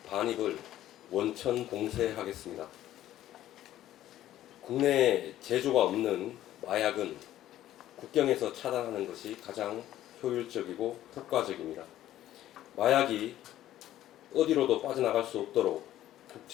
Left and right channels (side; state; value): right; quieter; 13.2 dB